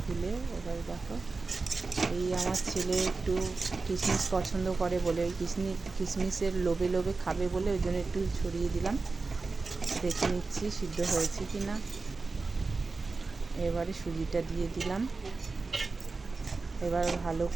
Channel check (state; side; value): quieter; left; 4.0 dB